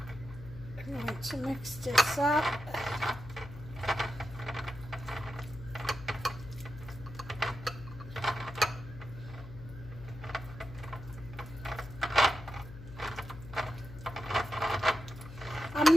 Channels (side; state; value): left; noise; hum, 13 dB below the sound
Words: I'm going to mix this up. I'm